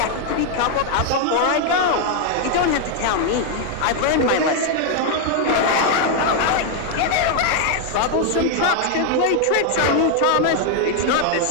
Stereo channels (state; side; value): different; both; correlation 0.00